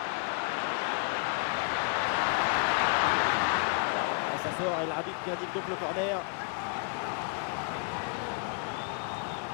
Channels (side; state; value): right; quieter; 38.8 dB